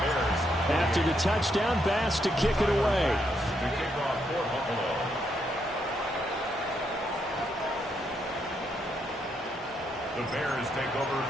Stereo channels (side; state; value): both; normal; correlation 0.77